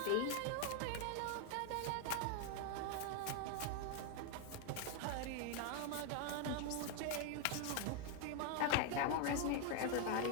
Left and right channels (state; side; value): different; both; correlation 0.00